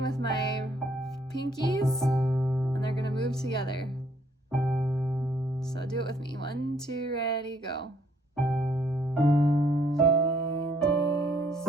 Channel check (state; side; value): normal; both; correlation 0.66